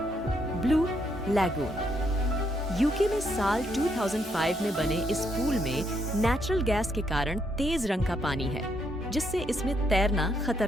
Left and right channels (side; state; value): both; normal; correlation 0.75